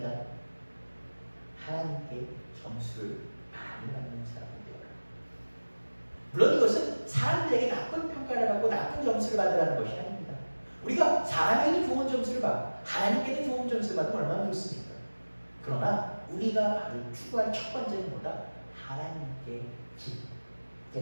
하나님께 점수를 많이 받는 사람이 되어라. 물론 이것은 사람들에게 나쁜 평가를 받고 나쁜 점수를 받으라는 것이 아닙니다. 우리가 사람에게 좋은 점수를 받고 하나님께도 좋은 점수를 받으면 얼마나 좋습니까? 그러나 우리가 바로 추구할 첫 번째는 뭐다? 하나님께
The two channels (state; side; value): inverted; both; correlation -1.00